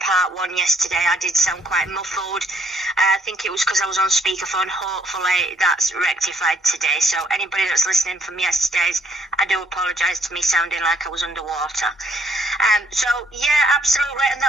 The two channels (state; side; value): normal; both; correlation 0.66